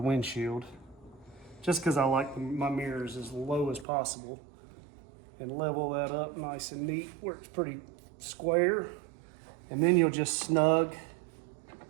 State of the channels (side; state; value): left; drops out; at 3.9 s